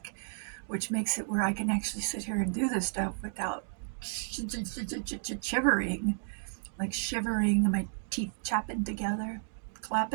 which makes it where I can actually sit here and do this stuff without shivering, like shivering and my teeth chapping together.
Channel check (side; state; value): left; silent; digital silence